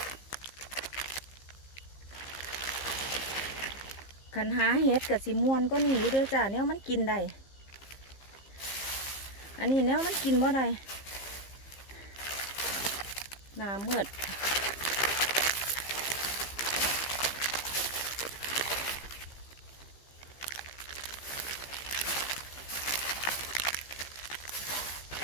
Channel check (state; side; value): late; right; 15 ms